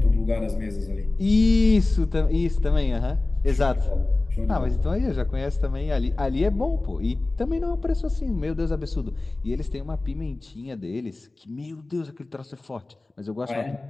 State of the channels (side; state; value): right; quieter; 3.1 dB